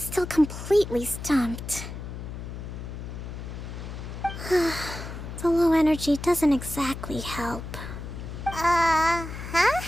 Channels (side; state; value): left; noise; hum, 9 dB below the sound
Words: completely stumped. The low energy doesn't exactly help. Huh?